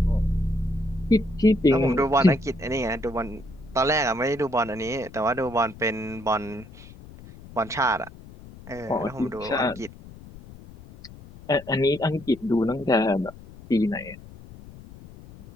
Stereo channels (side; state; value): left; noise; rumble, 18 dB below the sound